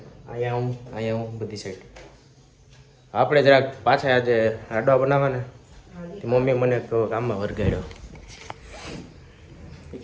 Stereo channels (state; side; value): identical; both; correlation 1.00